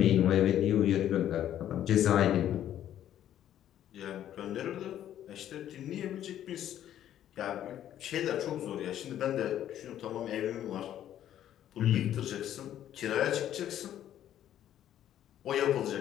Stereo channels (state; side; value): quieter; right; 11.3 dB